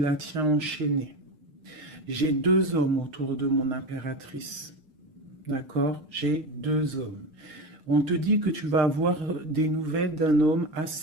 tient enchaînée. J'ai deux hommes autour de mon impératrice. D'accord? J'ai deux hommes. On te dit que tu vas avoir des nouvelles d'un homme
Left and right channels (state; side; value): late; left; 6.5 ms